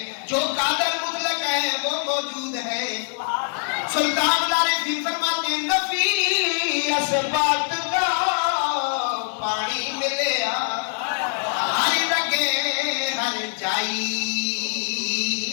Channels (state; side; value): silent; right; 62 dB below the other